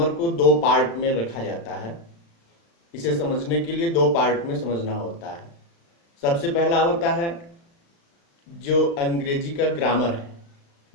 को दो पार्ट में रखा जाता है। इसे समझने के लिए दो पार्ट में समझना होता है। सबसे पहला होता है जो अंग्रेजी का ग्रामर है।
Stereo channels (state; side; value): late; right; 35 ms